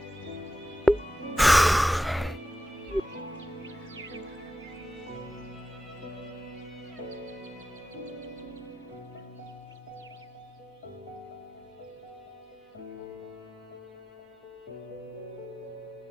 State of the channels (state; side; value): normal; both; correlation 0.93